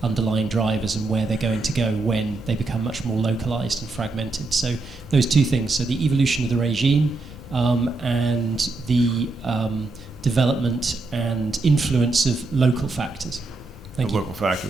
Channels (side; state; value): left; quieter; 3.5 dB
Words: underlying drivers and where they're going to go when they become much more localized and fragmented. So those two things, so the evolution of the regime and the development and influence of local factors. Thank you. Local